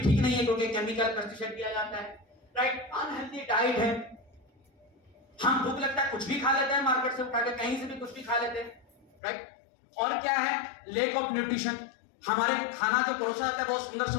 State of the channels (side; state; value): right; drops out; at 9.1 s